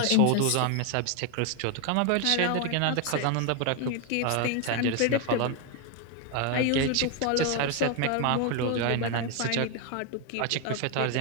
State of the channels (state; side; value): different; both; correlation 0.01